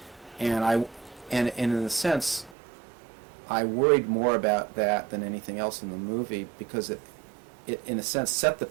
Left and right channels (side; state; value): left; drops out; at 2.6 s